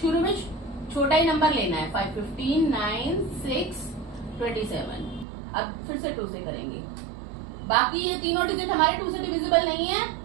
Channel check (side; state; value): left; drops out; at 5.2 s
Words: शुरू में छोटा ही नंबर लेना है। 5 15 9 6 27। अब फिर से 2 से करेंगे। बाकी ये तीनों डिजिट हमारे 2 से डिविजिबल नहीं है